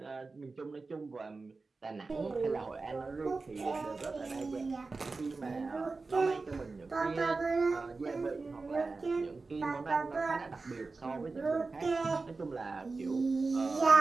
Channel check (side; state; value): left; quieter; 3.9 dB